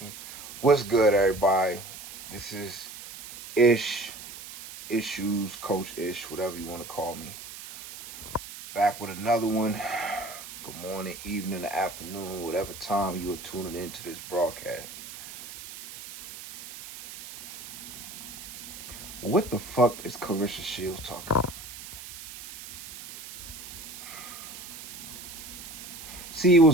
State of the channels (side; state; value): right; noise; hiss, 13 dB below the sound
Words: what's good, everybody? This is Ishues, Coach Ish, whatever you want to call me. Back with another one. Good morning, evening, or afternoon, whatever time you are tuning into this broadcast. What the fuck is Claressa Shields talking about? See, it